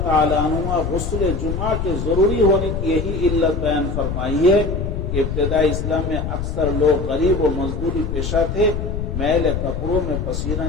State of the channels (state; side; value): noise; left; rumble, 3 dB below the sound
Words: ताला अन्हुमा गुस्ल जुमा के जरूरी होने की यही इल्लत बयान फरमाई है कि इब्तिदा इस्लाम में अक्सर लोग गरीब और मजदूरी पेशा थे, मैले कपड़ों में पसीना